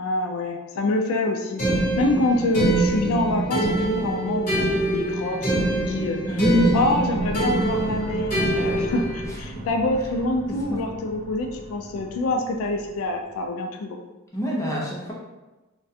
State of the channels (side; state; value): both; normal; correlation 0.39